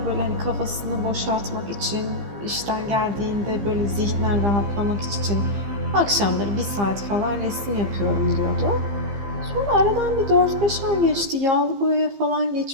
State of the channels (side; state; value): left; late; 15 ms